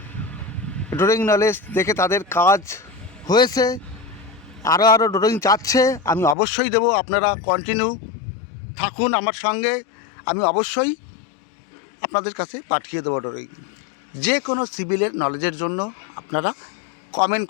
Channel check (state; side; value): drops out; right; at 6.4 s